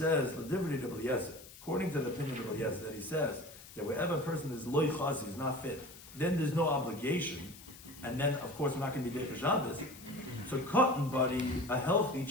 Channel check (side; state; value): left; noise; hiss, 18 dB below the sound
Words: according to the opinion of Rabbi Eliezer, that he says that wherever a person is loy chazi, is not fit, then there's no obligation, and then of course we're not going to be Derech Shabbos. So cotton buddy, a healthy